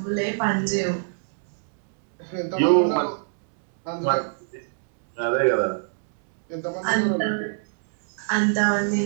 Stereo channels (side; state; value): left; silent; digital silence